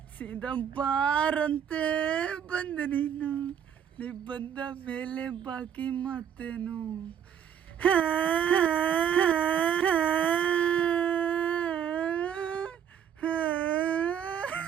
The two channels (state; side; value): quieter; left; 8.8 dB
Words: ಸೀದಾ ಬಾರಂತೆ ಬಂದೆ ನೀನು, ನೀ ಬಂದ ಮೇಲೆ ಬಾಕಿ ಮಾತೇನು.